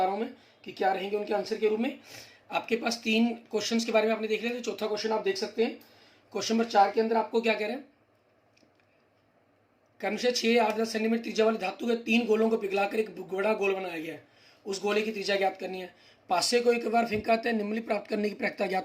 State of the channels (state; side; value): identical; both; correlation 1.00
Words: रहा हूँ मैं कि क्या रहेंगे उनके आंसर के रूप में। आपके पास 3 क्वेश्चंस के बारे में आपने देख लिया, तो चौथा क्वेश्चन आप देख सकते हैं। क्वेश्चन नंबर 4 के अंदर आपको क्या कह रहे हैं? क्रमशः 6, 8, 10 सेंटीमीटर त्रिज्या वाले धातु के 3 गोलों को पिघलाकर एक बड़ा गोल बनाया गया है। उस गोले की त्रिज्या ज्ञात करनी है। पासे को एक बार फेंकाते हैं, निम्नलिखित प्राप्त करने की प्रायिकता